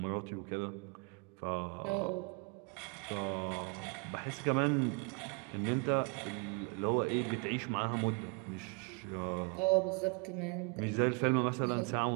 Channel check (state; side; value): quieter; left; 33.7 dB